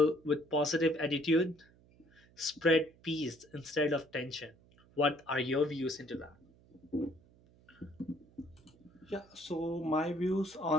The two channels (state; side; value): noise; right; hum, 28 dB below the sound